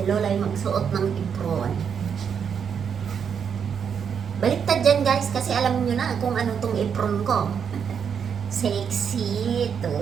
lola ay magsuot ng apron. Baliktad dyan guys, kasi alam nyo na kung ano tong apron ko. Sexy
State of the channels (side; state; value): left; quieter; 7.2 dB